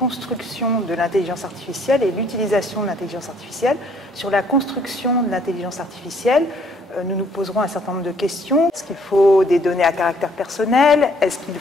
de l'intelligence artificielle et l'utilisation de l'intelligence artificielle. Sur la construction de l'intelligence artificielle, nous nous poserons un certain nombre de questions. Est-ce qu'il faut des données à caractère personnel? Est-ce qu'il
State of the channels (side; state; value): both; normal; correlation 0.63